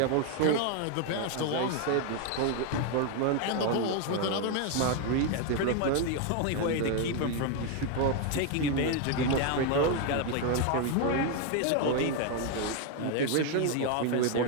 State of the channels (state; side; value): different; both; correlation 0.01